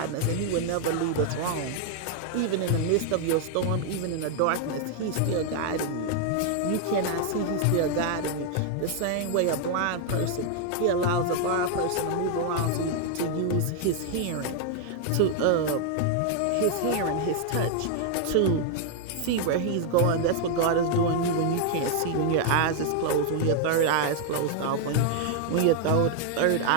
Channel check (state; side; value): different; both; correlation 0.00